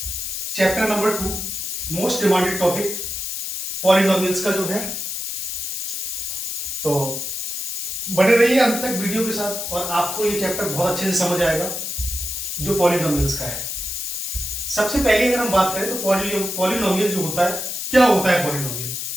chapter number 2, most demanded topic polynomials का जो है। तो बने रहिए अंत तक वीडियो के साथ और आपको ये चैप्टर बहुत अच्छे से समझ आएगा जो पॉलिनोमियल्स का है। सबसे पहले अगर हम बात करें तो पॉलिनोमियल जो होता है, क्या होता है पॉलिनोमियल?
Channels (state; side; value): noise; left; hiss, 4 dB below the sound